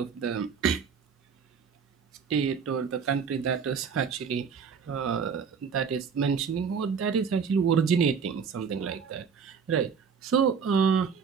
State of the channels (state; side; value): quieter; left; 6.2 dB